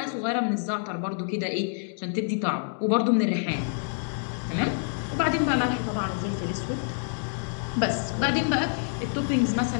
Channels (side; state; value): right; silent; digital silence